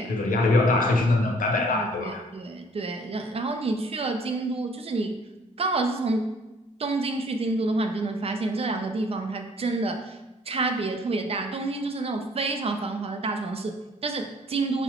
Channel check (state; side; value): normal; both; correlation 0.58